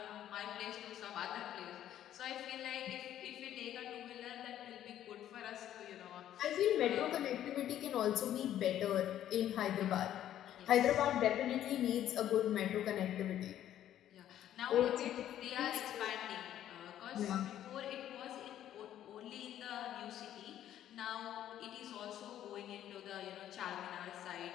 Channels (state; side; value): quieter; right; 11.5 dB